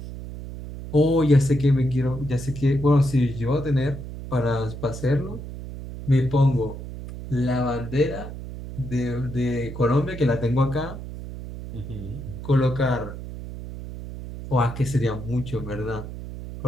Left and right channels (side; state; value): right; noise; hum, 10 dB below the sound